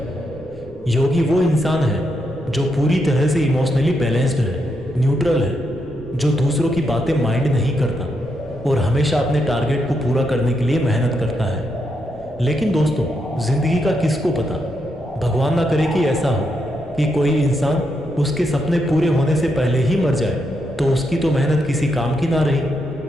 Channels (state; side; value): normal; both; correlation 0.81